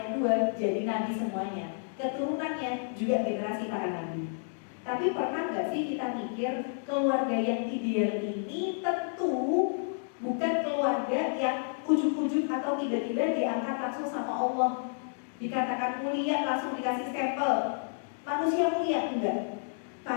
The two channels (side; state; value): right; silent; digital silence